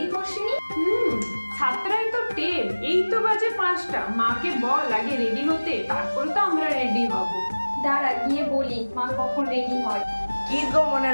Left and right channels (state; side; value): inverted; both; correlation -1.00